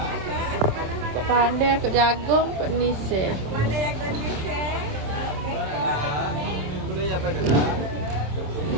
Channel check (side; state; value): left; late; 27 ms